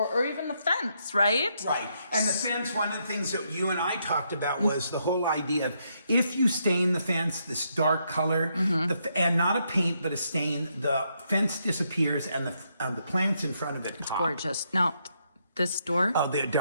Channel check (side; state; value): both; inverted; correlation -0.77